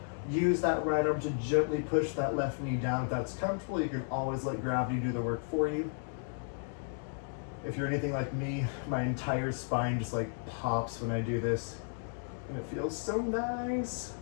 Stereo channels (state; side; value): silent; right; digital silence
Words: Use that right arm to gently push that left knee down. If that's comfortable, you can always let gravity do the work for you. If you're anything like me, my entire spine just like pops when I do this, and it feels so nice.